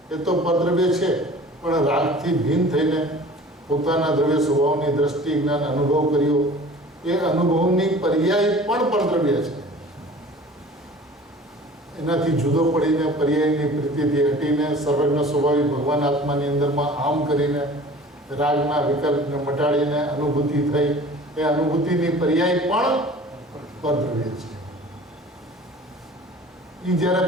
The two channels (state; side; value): normal; both; correlation 0.44